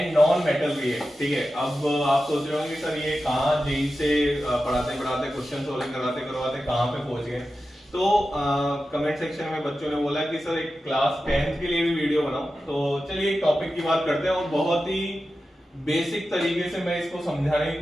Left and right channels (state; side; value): normal; both; correlation 0.92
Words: non metal react, ठीक है। अब आप सोच रहे होंगे सर ये कहाँ जेई से पढ़ाते पढ़ाते क्वेश्चन सोल्विंग करवाते करवाते कहाँ पे पहुंच गए। तो कमेंट सेक्शन में बच्चों ने बोला कि सर एक क्लास 10th के लिए भी वीडियो बनाओ। तो चलिए एक टॉपिक की बात करते हैं और बहुत ही बेसिक तरीके से मैं इसको समझाने की